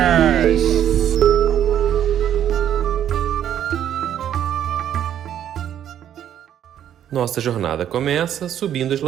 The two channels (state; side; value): quieter; left; 10.3 dB